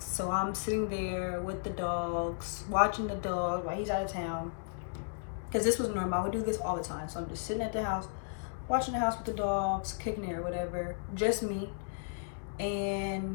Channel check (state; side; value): silent; right; digital silence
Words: so I'm sitting there with the dogs, watching the dog while he's out of town, because this was normal. I would do this all the time. So I'm just sitting at the house, watching the house with the dogs, kicking it or whatever, just me.